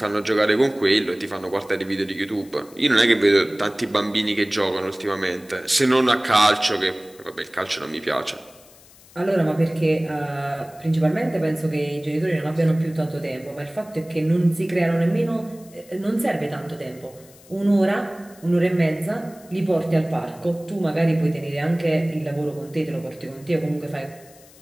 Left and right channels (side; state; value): left; noise; hiss, 25 dB below the sound